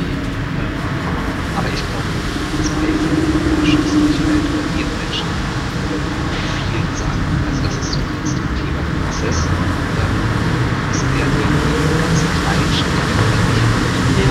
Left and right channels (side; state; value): both; identical; correlation 1.00